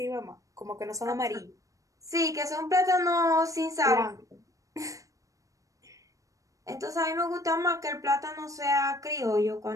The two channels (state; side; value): late; left; 0.16 ms